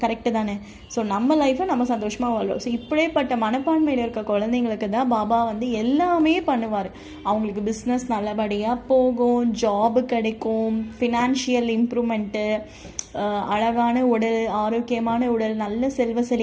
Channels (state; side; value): identical; both; correlation 1.00